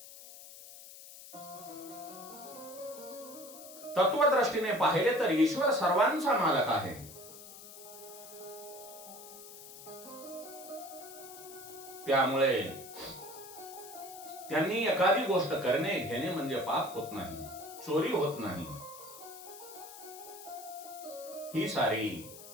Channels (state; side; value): noise; left; hiss, 15 dB below the sound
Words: तत्वदृष्टीने पाहिले तर ईश्वर सर्वांचा मालक आहे. त्यामुळे त्यांनी एखादी गोष्ट करणे घेणे म्हणजे पाप होत नाही, चोरी होत नाही. ही सारी